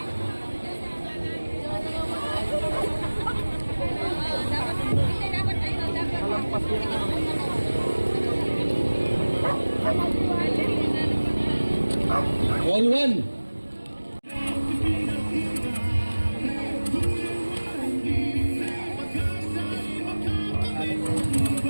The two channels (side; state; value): both; inverted; correlation -1.00